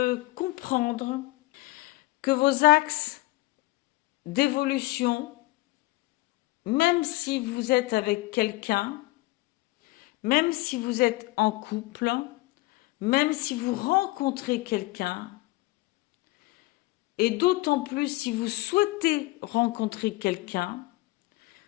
comprendre que vos axes d'évolution, même si vous êtes avec quelqu'un, même si vous êtes en couple, même si vous rencontrez quelqu'un, et d'autant plus si vous souhaitez rencontrer quelqu'un,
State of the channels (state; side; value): quieter; right; 20.8 dB